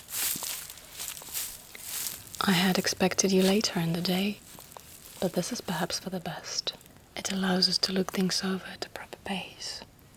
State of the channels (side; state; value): both; identical; correlation 1.00